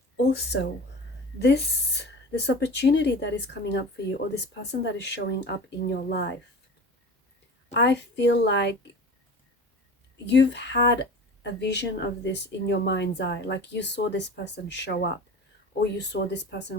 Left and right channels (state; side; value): normal; both; correlation 0.36